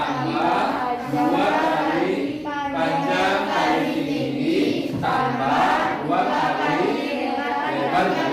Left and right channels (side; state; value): both; identical; correlation 1.00